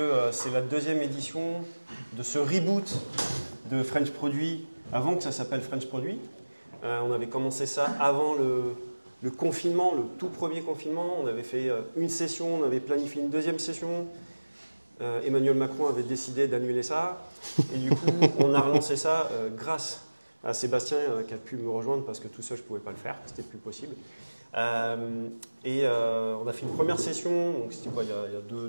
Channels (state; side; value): inverted; both; correlation -1.00